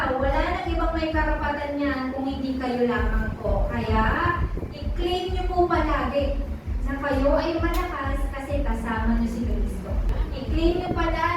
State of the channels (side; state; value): both; identical; correlation 1.00